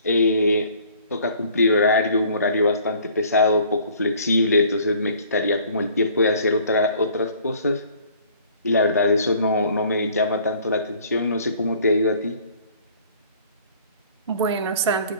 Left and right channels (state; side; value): inverted; both; correlation -0.55